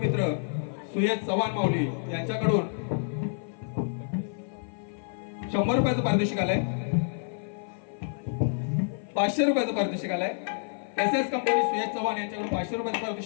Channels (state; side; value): silent; right; 55 dB below the other